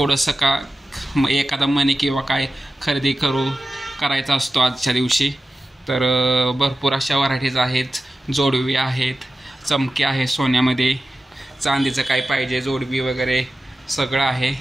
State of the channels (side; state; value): both; normal; correlation 0.94